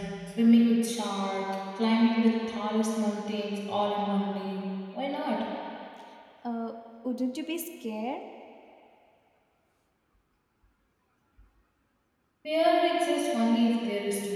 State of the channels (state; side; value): identical; both; correlation 1.00